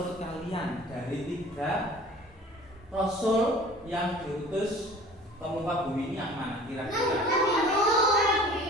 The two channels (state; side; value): normal; both; correlation 0.45